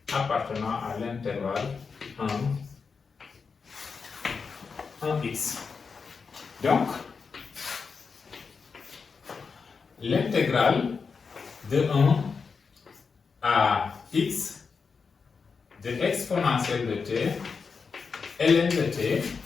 appartenant à l'intervalle 1x. Donc, l'intégrale de 1 à x de exponentielle de t, ln de t,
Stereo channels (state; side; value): quieter; right; 5.3 dB